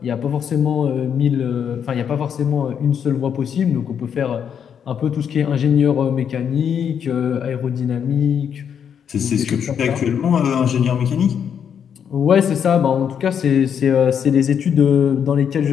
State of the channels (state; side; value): quieter; right; 7.9 dB